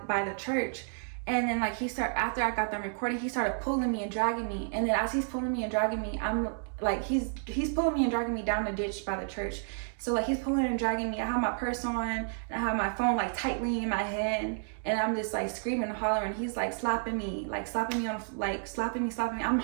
the church. And then like after I got done recording, he started pulling me and dragging me. And then as he's pulling me and dragging me, I'm like, he's pulling me and dragging me down the ditch by the church. So like he's pulling and dragging me. I have my purse on, and I have my phone like tightly in my hand, and I'm just like screaming and hollering. He's like slapping me on like slapping me. I'm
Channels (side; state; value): left; silent; digital silence